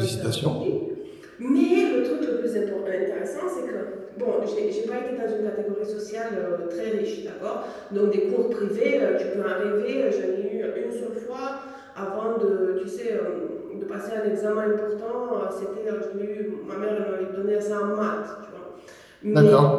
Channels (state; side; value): identical; both; correlation 1.00